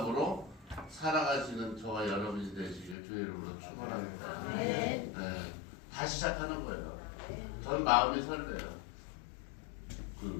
살아가시는 저와 여러분이 되시길 주의 이름으로 축원합니다. 네. 다시 시작하는 거예요. 전 마음이 설레요.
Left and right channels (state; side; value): drops out; right; at 3.0 s